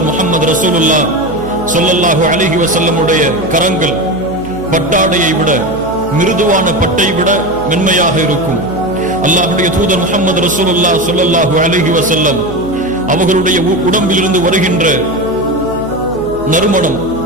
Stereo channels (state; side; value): noise; right; hum, 14 dB below the sound